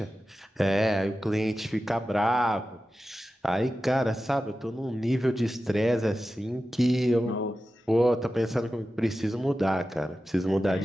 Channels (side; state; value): both; normal; correlation 0.93